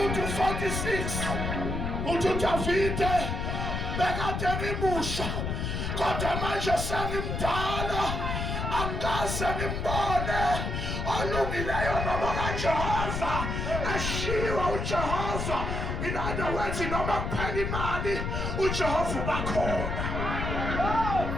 46 uthi uDavide bekade ngimusha kodwa manje sengimdala angikaze ngimbone olungileyo noma kaJehova ashiwa uJehova. In other words noma kuphela imali uJehova ubakhona.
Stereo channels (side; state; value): left; noise; rumble, 2 dB below the sound